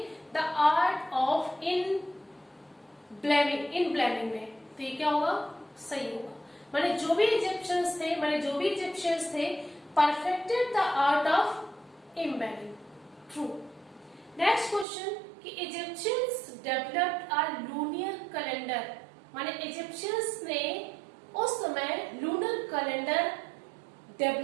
the art of embalming में, तो ये क्या होगा? सही होगा, माने जो भी इजिप्शियंस थे perfected the art of embalming, true. Next question कि Egyptians developed a lunar calendar, माने इजिप्शियंस ने उस समय लूनर कैलेंडर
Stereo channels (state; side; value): drops out; left; at 14.9 s